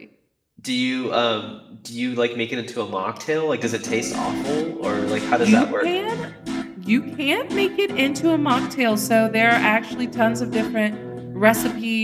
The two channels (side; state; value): both; identical; correlation 1.00